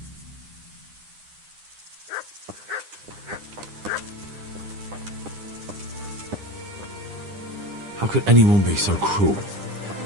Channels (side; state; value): left; late; 9.9 ms